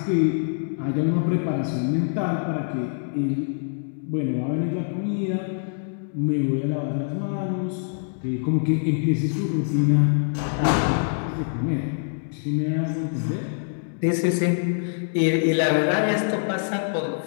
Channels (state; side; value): silent; right; digital silence